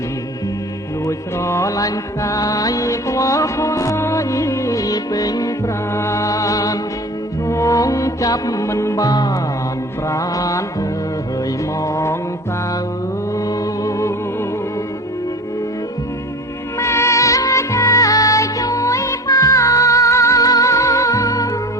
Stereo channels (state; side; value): normal; both; correlation 0.36